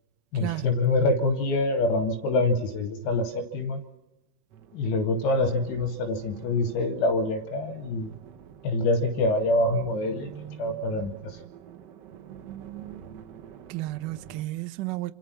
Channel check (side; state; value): right; late; 5.3 ms